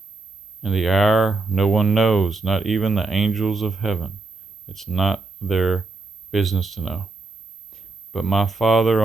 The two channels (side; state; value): left; quieter; 3.7 dB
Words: and the hour, no one knows, not even the angels of heaven. It's not their business to know. But my Father